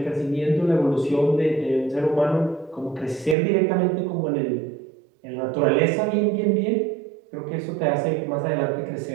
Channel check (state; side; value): drops out; left; at 3.4 s